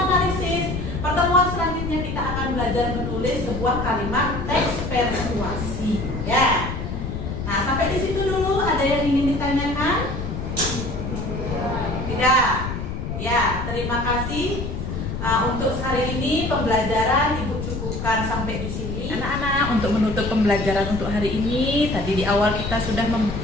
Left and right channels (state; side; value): noise; left; rumble, 5 dB below the sound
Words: Pertemuan selanjutnya kita akan belajar menulis sebuah kalimat teks persuasi, ya. Nah, sampai di situ dulu. Ada yang ingin ditanyakan? Tidak. Ya, terima kasih. Untuk hari ini pembelajaran ibu cukupkan sampai di sini. Anak-anak, untuk menutup pembelajaran untuk hari ini, tadi di awal kita sudah